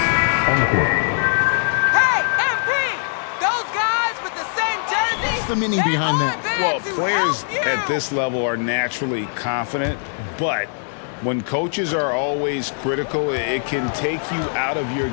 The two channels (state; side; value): silent; right; digital silence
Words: on the court. Hey, MP! meaning behind that? Well, players at this level are naturally confident, but when coaches are always critical, it can take you out of your